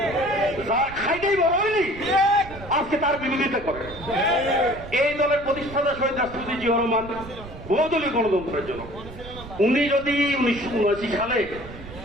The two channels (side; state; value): right; noise; rumble, 15 dB below the sound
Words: যার খাইতেই বড় হয়নি আজকে তার বিরোধিতা করে। এই দলের প্রতিষ্ঠাতা শহীদ রাষ্ট্রপতি জিয়াউর রহমান বহুদলীয় গণতন্ত্রের জন্য, উনি যদি 1979 সালে